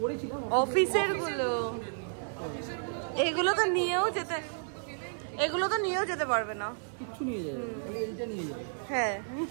করেছিলাম। অফিসের গুলো, এগুলো তো নিয়েও যেতে, এগুলো তো নিয়েও যেতে পারবে না। কিচ্ছু নিয়ে যাবে, খালি এইটা নিয়ে যাবে। হ্যাঁ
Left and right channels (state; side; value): silent; left; digital silence